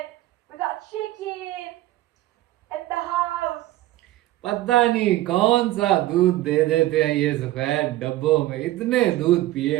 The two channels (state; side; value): quieter; left; 16.0 dB